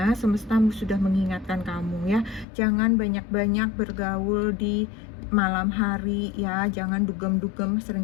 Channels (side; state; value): right; drops out; at 2.5 s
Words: semesta sudah mengingatkan kamu ya. Jangan banyak-banyak bergaul di malam hari ya. Jangan dugem-dugem,